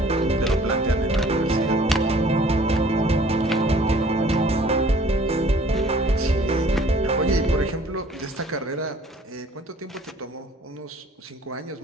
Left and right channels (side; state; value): both; normal; correlation 0.54